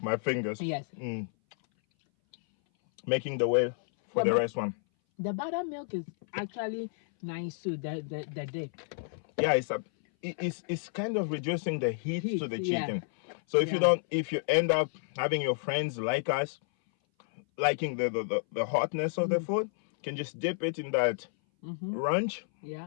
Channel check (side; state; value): right; silent; 57 dB below the other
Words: my fingers. Yes. Making the way for the rest one. The buttermilk is actually nice too. The dip. Yeah, it's kind of reducing the heat to the chicken. Yeah. So if you end up having your friends like us liking the hotness of the food, you can just dip it in that ranch, Yeah.